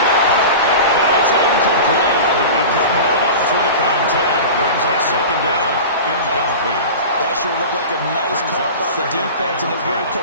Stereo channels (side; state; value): both; inverted; correlation -0.32